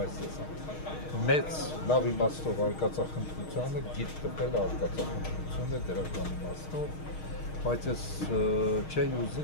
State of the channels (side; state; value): right; late; 6.4 ms